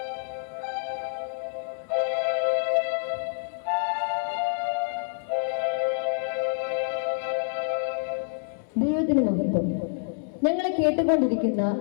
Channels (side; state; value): right; silent; 60 dB below the other